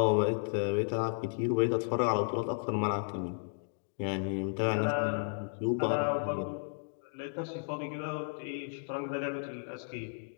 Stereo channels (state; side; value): silent; right; digital silence